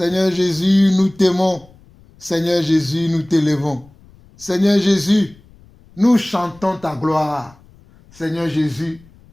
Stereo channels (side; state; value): left; noise; rumble, 27 dB below the sound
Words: Jésus, nous t'aimons. Seigneur Jésus, nous t'élevons. Seigneur Jésus, nous chantons ta gloire. Seigneur Jésus,